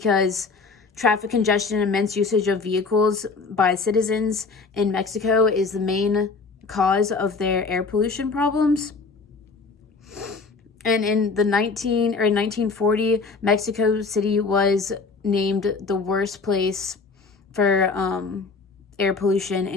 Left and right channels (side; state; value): right; quieter; 4.3 dB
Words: traffic congestion and immense usage of vehicles by citizens in Mexico is the main cause of their air pollution problems. And in 1940, Mexico City was named the worst place for air pollution